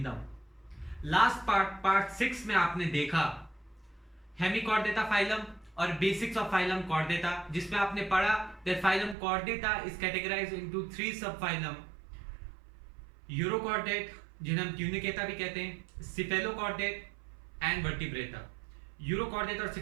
Last part 6 में आपने देखा हेमिकॉर्डेटा फाइलम और बेसिक्स ऑफ फाइलम कॉर्डेटा, जिसमें आपने पढ़ा that phylum chordata is categorised into 3 sub phylum. Urochordate, जिन्हें हम ट्यूनिकेटा भी कहते हैं, सिफेलोकॉर्डेट एंड वर्टिब्रेटा. यूरोकॉर्डेट और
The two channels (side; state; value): left; drops out; at 9.2 s